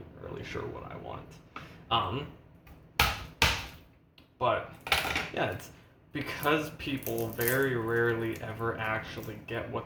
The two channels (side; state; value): both; identical; correlation 1.00